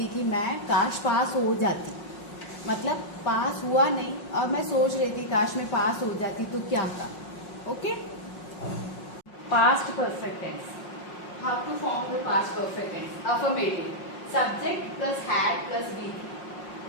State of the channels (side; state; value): right; late; 5.5 ms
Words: कि मैं काश पास हो जाती, मतलब पास हुआ नहीं और मैं सोच रही थी काश मैं पास हो जाती तो क्या था. Okay. Past perfect tense. How to form the past perfect tense? Affirmative, subject plus had plus be.